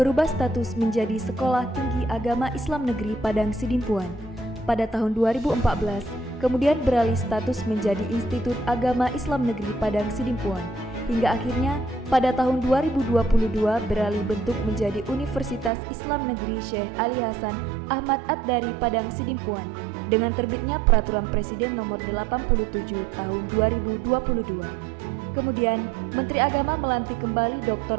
status menjadi Sekolah Tinggi Agama Islam Negeri Padang Sidimpuan. Pada tahun 2014, kemudian beralih status menjadi Institut Agama Islam Negeri Padang Sidimpuan. Hingga akhirnya pada tahun 2022 beralih bentuk menjadi Universitas Islam Negeri Syekh Ali Hasan Ahmad Ad-Dari Padang Sidimpuan dengan terbitnya Peraturan Presiden Nomor 87 Tahun 2022. Kemudian Menteri Agama melantik kembali Dr.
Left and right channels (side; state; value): left; drops out; at 15.7 s